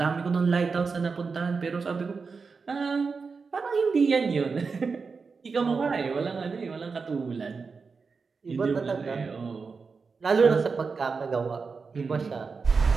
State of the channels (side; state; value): left; quieter; 4.9 dB